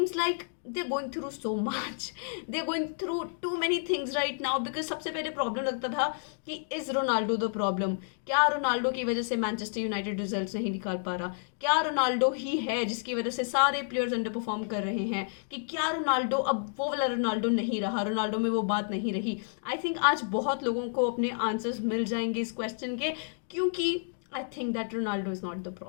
like they're going through so much. They're going through too many things right now because सबसे पहले problem लगता था कि is Ronaldo the problem, क्या Ronaldo की वजह से Manchester United results नहीं निकाल पा रहा, क्या रोनाल्डो ही है जिसकी वजह से सारे प्लेयर्स अंडर परफॉर्म कर रहे हैं, कि क्या रोनाल्डो अब वो वाला रोनाल्डो नहीं रहा, रोनाल्डो में वो बात नहीं रही. आई थिंक आज बहुत लोगों को अपने आंसर्स मिल जाएंगे इस क्वेश्चन के, क्योंकि I think that Ronaldo is not the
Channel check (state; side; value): silent; right; digital silence